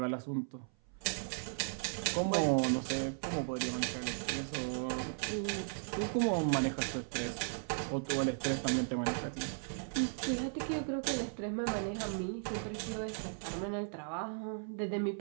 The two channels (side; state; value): left; silent; 53 dB below the other